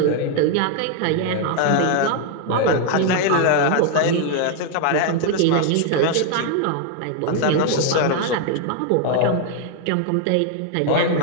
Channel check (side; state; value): both; different; correlation 0.00